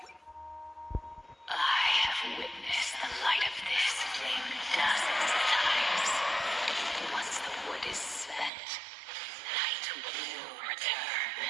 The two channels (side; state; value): left; drops out; at 8.5 s